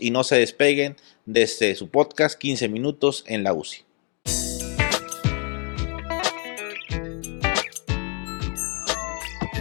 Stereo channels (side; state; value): right; quieter; 36.3 dB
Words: no se despeguen desde su podcast 15 minutos en la UCI.